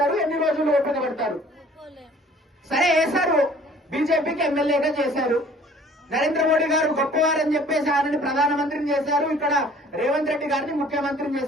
ఎన్ని రోజులు ఓపిక పడతారు? సరే వేశారు, బీజేపీకి ఎమ్మెల్యేగా చేశారు. నరేంద్ర మోడీ గారు గొప్పవారని చెప్పేసి ఆయనని ప్రధానమంత్రిని చేశారు. ఇక్కడ రేవంత్ రెడ్డి గారిని ముఖ్యమంత్రిని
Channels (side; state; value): both; normal; correlation 0.53